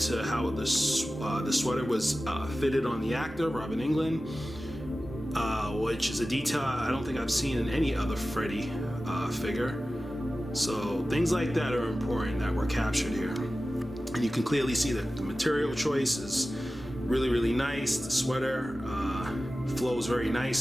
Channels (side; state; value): both; normal; correlation 0.95